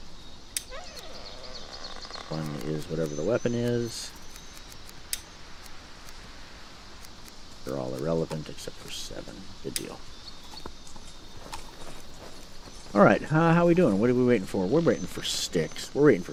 1 is whatever the weapon is. are all irrelevant except for 7. Good deal. Alright, how are we doing? What are we waiting for? We're waiting for sticks. We're waiting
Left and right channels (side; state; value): both; identical; correlation 1.00